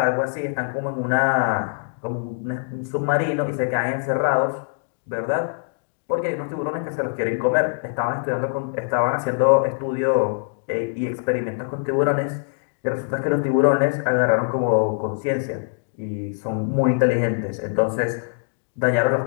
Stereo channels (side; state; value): right; silent; digital silence